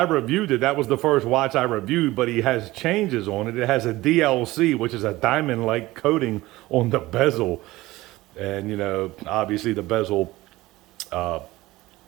reviewed it. That was the first watch I reviewed, but he has changes on it. It has a DLC, which is a diamond-like coating on the bezel. And, obviously the bezel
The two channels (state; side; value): quieter; left; 18.4 dB